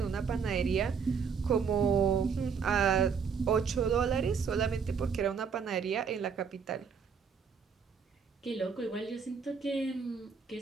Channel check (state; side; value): quieter; left; 6.1 dB